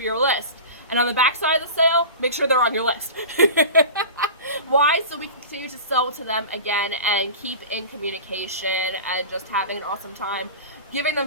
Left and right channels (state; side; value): inverted; both; correlation -0.34